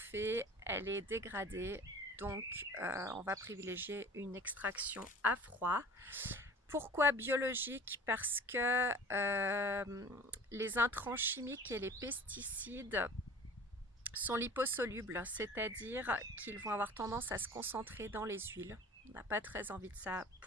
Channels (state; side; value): normal; both; correlation 0.42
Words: elle est dégradée. Donc on va privilégier une extraction à froid. Pourquoi biologique? Parce que les intrants chimiques et les pesticides sont liposolubles, c'est-à-dire qu'ils vont avoir tendance à se concentrer dans les huiles. On n'a pas très envie de ça